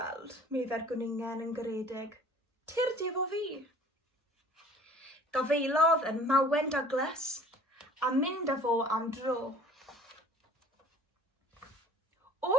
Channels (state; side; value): normal; both; correlation 0.50